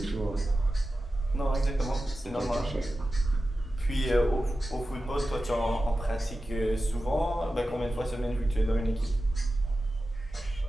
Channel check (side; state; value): both; normal; correlation 0.93